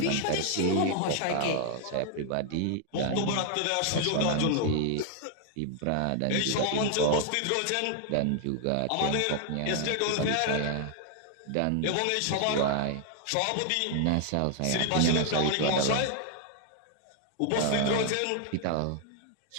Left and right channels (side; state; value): both; different; correlation 0.00